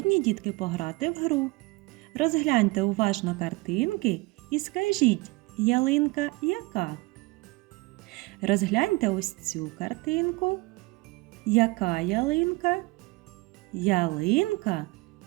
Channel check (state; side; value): quieter; left; 23.6 dB